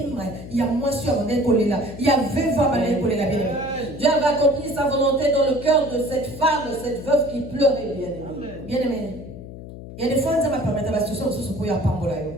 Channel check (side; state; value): left; noise; hum, 13 dB below the sound